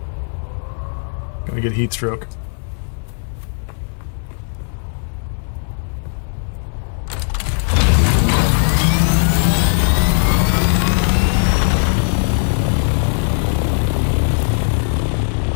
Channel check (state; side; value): silent; right; digital silence